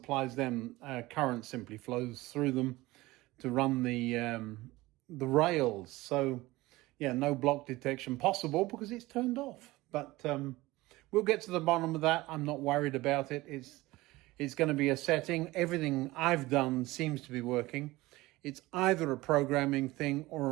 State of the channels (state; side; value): quieter; left; 19.5 dB